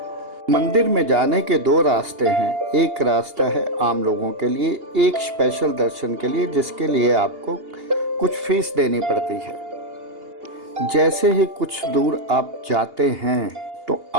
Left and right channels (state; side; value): late; left; 2.8 ms